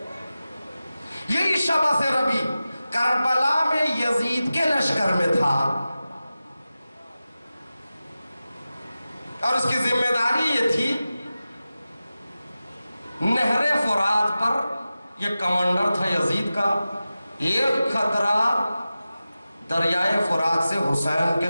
یہی شبث ربعی کربلا میں یزید کے لشکر میں تھا، اور اس کی ذمہ داری یہ تھی، نہر فرات پر یہ کمانڈر تھا یزید کا، ایک خطرہ دریائے فرات سے حسین کے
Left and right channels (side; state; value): both; inverted; correlation -0.95